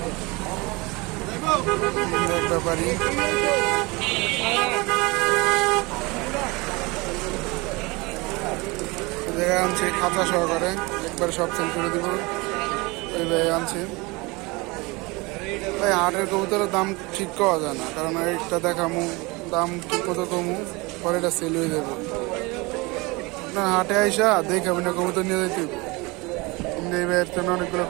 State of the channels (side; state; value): left; quieter; 24.9 dB